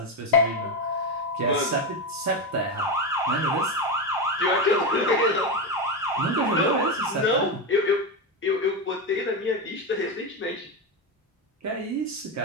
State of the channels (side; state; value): both; normal; correlation 0.13